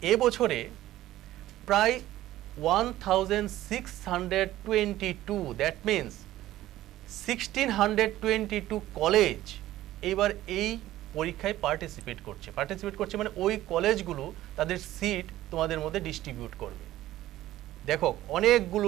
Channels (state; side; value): quieter; left; 14.8 dB